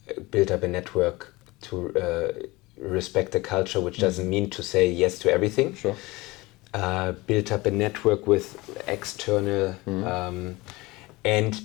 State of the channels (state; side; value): quieter; right; 21.7 dB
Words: build up a network, to respect the culture, which doesn't mean to say yes to everything. Sure. Build up a network with external,